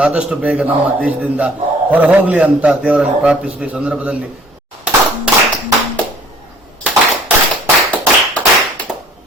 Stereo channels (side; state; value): both; normal; correlation 0.54